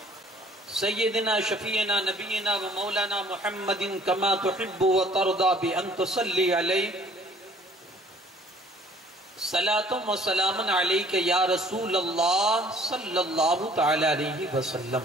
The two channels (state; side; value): normal; both; correlation 0.56